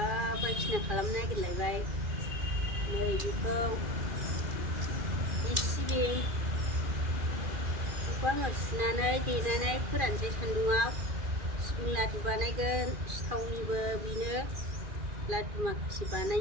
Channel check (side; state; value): left; late; 2.4 ms